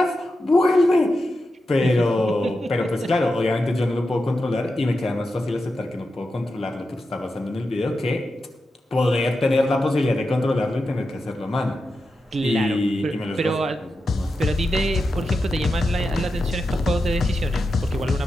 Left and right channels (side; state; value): both; normal; correlation 0.89